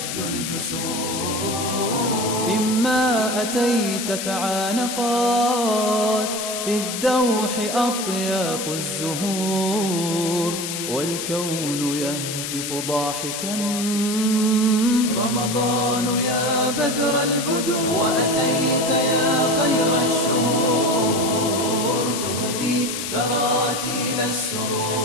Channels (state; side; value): noise; left; hiss, 5 dB below the sound